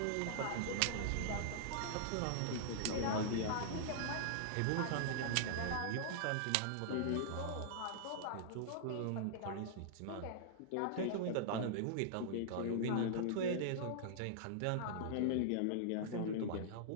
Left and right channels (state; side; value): different; both; correlation -0.01